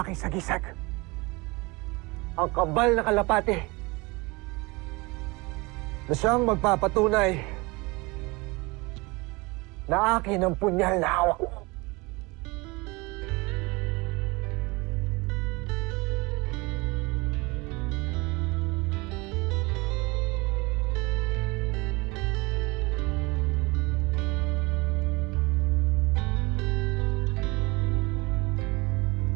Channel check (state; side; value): quieter; left; 25.0 dB